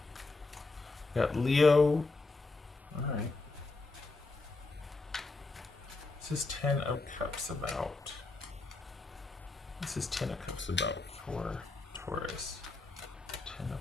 got Leo. Alright. This is Ten of Cups about. This is Ten of Cups about for Taurus. Ten of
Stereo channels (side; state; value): right; quieter; 3.5 dB